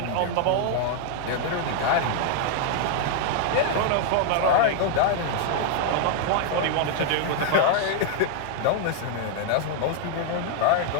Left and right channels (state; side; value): different; both; correlation 0.00